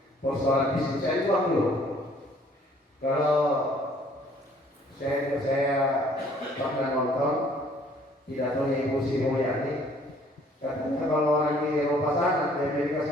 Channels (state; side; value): normal; both; correlation 0.59